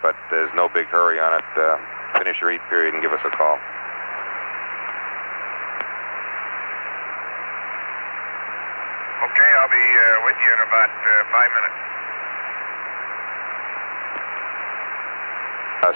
there's no big hurry on it. Finish your eat period and give us a call. Okay, I'll be with you in about 5 minutes.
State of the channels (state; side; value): inverted; both; correlation -1.00